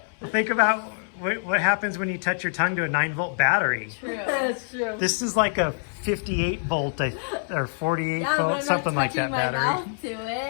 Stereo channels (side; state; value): right; silent; 62 dB below the other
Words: Think about what happens when you touch your tongue to a 9-volt battery. True. That's true. This is like a 58 volt or 48 Yeah, but volt, I'm not something like touching that my battery. mouth to